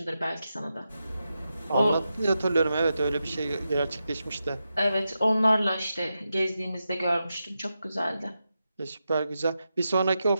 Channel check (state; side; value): inverted; both; correlation -0.89